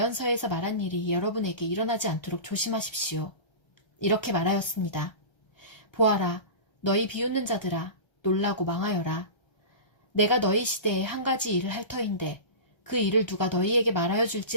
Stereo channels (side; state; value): right; late; 1.3 ms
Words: 말한 일이 여러분에게 일어나지 않도록 조심하십시오. 이렇게 말하였습니다. 보아라, 너희 비웃는 자들아, 놀라고 망하여라. 내가 너희 시대에 한 가지 일을 할 터인데 그 일을 누가 너희에게 말하여